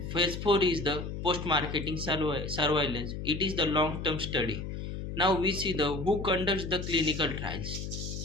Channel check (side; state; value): left; noise; hum, 6 dB below the sound